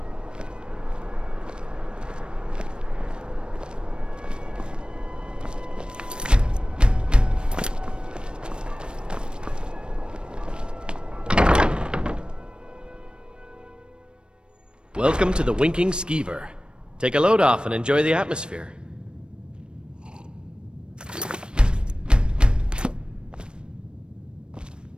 Welcome to the Winking Skeever. Take a load off and enjoy the atmosphere.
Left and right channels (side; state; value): left; late; 0.054 ms